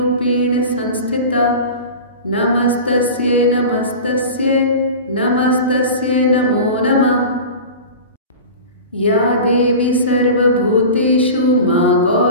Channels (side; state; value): both; inverted; correlation -0.33